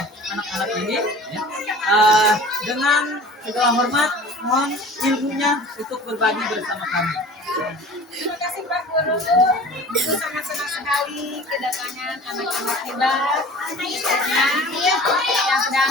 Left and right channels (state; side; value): normal; both; correlation 0.42